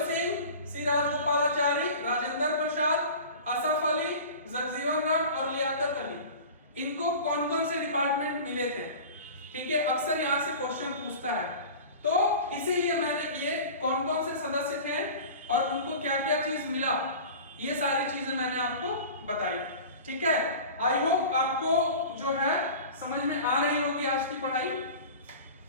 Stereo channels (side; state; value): both; inverted; correlation -0.37